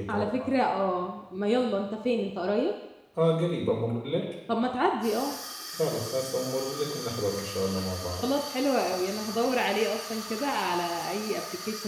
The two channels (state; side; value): identical; both; correlation 1.00